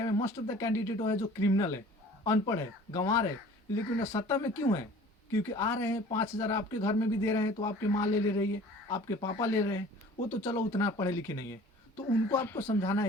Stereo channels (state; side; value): normal; both; correlation 0.47